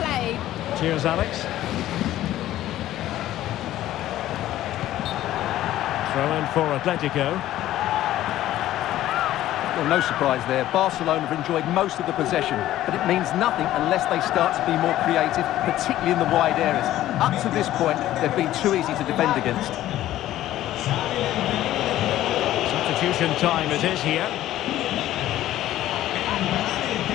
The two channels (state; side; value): quieter; right; 13.8 dB